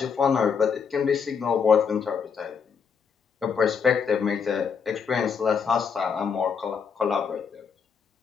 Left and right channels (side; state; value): right; quieter; 6.3 dB